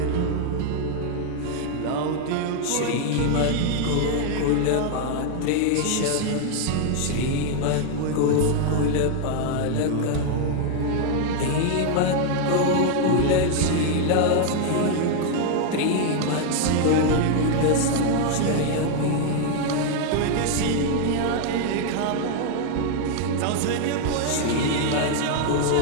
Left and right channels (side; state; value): both; different; correlation 0.00